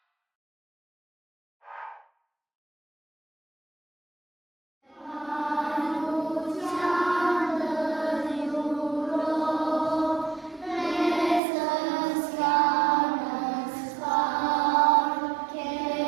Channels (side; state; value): left; drops out; at 11.4 s